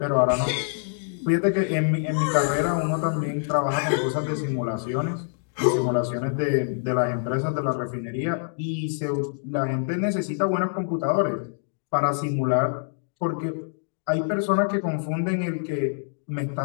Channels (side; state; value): right; silent; digital silence